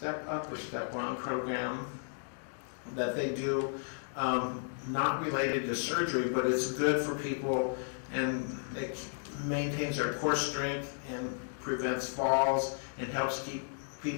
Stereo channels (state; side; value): silent; right; digital silence